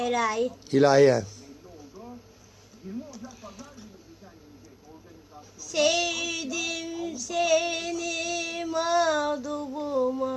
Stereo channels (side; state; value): both; identical; correlation 1.00